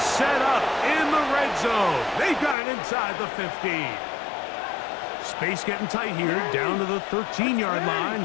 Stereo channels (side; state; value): right; drops out; at 2.6 s